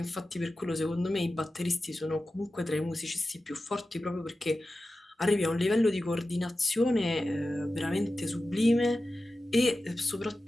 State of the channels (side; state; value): both; normal; correlation 0.94